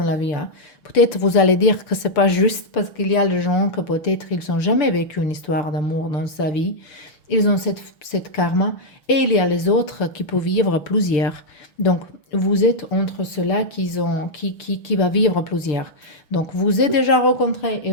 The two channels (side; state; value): right; late; 6.4 ms